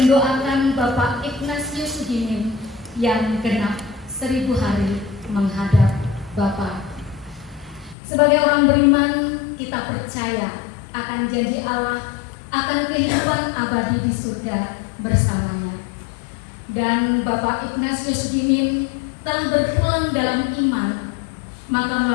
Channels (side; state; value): right; drops out; at 8.0 s